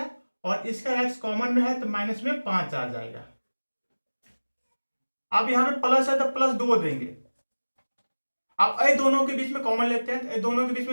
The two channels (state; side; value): inverted; both; correlation -1.00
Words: और इसका x कॉमन में है तो माइनस में 5 आ जाएगा। अब यहाँ पे प्लस है तो प्लस 2 देंगे। अब ये दोनों के बीच में कॉमन लेते हैं, तो ये दोनों के बीच